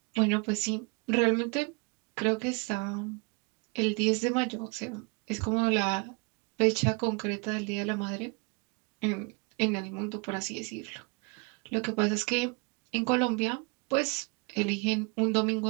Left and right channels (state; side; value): quieter; left; 29.7 dB